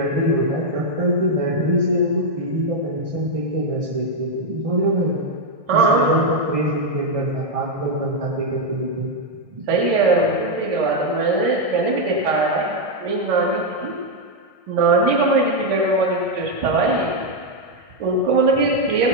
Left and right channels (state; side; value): late; left; 1.6 ms